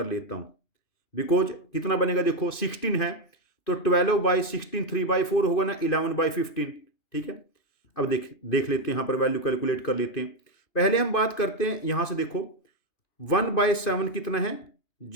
लेता हूं. बिकॉज कितना बनेगा देखो, 16 है तो 12/16 3/4 होगा ना, 11/15. ठीक है, अब देख लेते हैं, यहां पर वैल्यू कैलकुलेट कर लेते हैं. पहले हम बात करते हैं यहां से, देखो 1/7 कितना है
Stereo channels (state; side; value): late; right; 2.5 ms